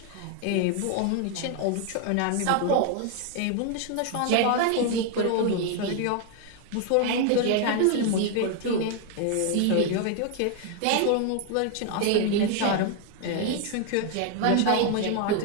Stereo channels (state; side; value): different; both; correlation 0.00